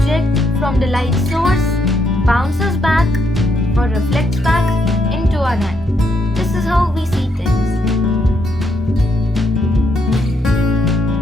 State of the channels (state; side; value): normal; both; correlation 0.76